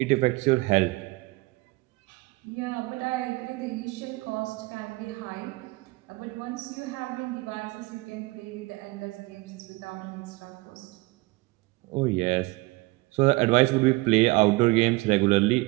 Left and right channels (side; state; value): left; quieter; 22.5 dB